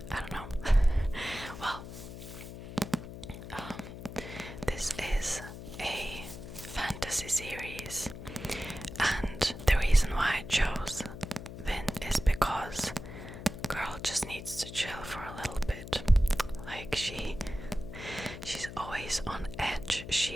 I don't know. Well, this is a fantasy series, and the reason why I chose Vin is because girl just needs to chill for a little bit. Like she's always on edge.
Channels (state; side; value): noise; left; hum, 11 dB below the sound